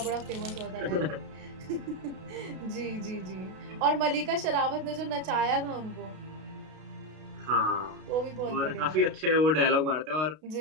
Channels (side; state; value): left; late; 32 ms